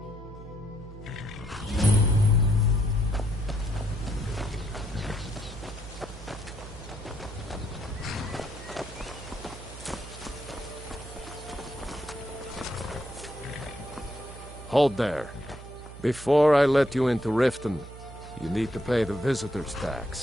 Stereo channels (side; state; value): right; noise; hum, 14 dB below the sound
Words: Hold there. Before I let you into Riften, you need to pay the visitor's